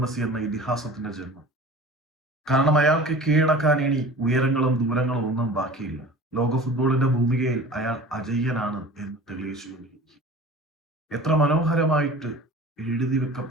മെസ്സി എന്ന ഇതിഹാസത്തിന്റെ ജന്മം. കാരണം അയാൾക്ക് കീഴടക്കാൻ ഇനി ഉയരങ്ങളും ദൂരങ്ങളും ഒന്നും ബാക്കിയില്ല. ലോക ഫുട്ബോളിന്റെ ഭൂമികയിൽ അയാൾ അജയ്യനാണ് എന്ന് തെളിയിച്ചുകൊണ്ടിരിക്കും. എത്ര മനോഹരമായിട്ട് എഴുതി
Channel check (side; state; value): both; normal; correlation 0.40